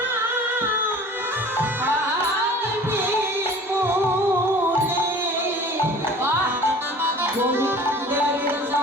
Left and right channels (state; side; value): normal; both; correlation 0.44